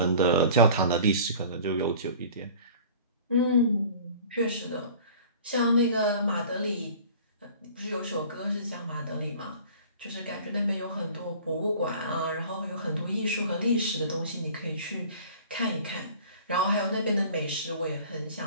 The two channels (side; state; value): both; inverted; correlation -0.45